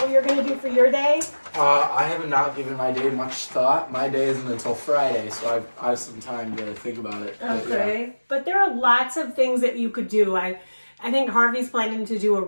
what you're going to do for your day? I have not given my day much thought. My day isn't until Friday, so I have some time to think about it. Okay. But there are lots of things that you could do. I think Harvey's planning to do a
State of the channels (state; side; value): inverted; both; correlation -1.00